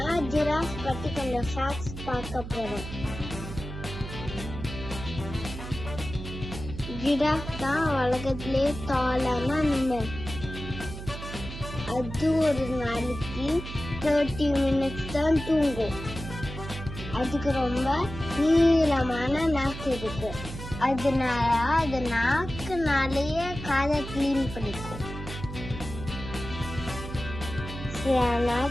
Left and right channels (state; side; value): noise; right; hum, 9 dB below the sound